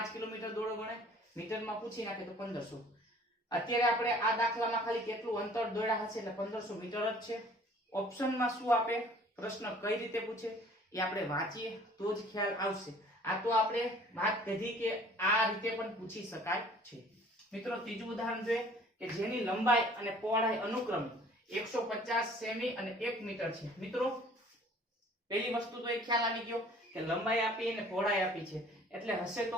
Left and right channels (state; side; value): normal; both; correlation 0.52